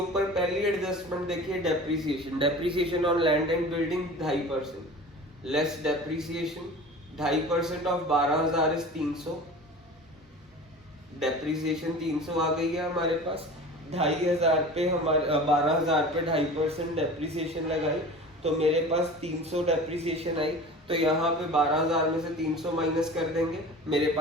पहली एडजस्टमेंट देखिए depreciation. Depreciation on land and building 2.5%, less depreciation 2.5% of 12,000 is 300। Depreciation 300 आ गई है हमारे पास। 2,500 पे हमारे 12,000 पे 2.5% डेप्रिसिएशन लगाई, तो मेरे पास 300 डेप्रिसिएशन आई। तो यहाँ पे 12,000 में से 300 माइनस कर देंगे, मेरे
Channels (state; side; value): normal; both; correlation 0.38